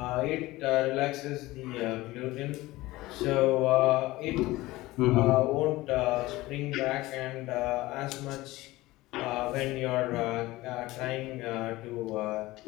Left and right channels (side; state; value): right; quieter; 18.8 dB